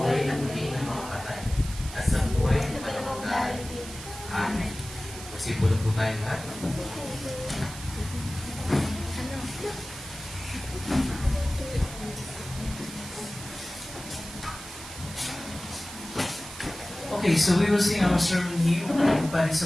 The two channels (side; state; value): right; noise; hiss, 13 dB below the sound